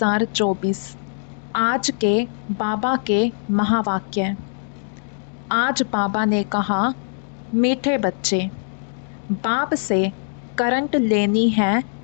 आज के बाबा के महावाक्य। आज बाबा ने कहा, मीठे बच्चे, बाप से करंट लेनी है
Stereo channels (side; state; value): right; silent; digital silence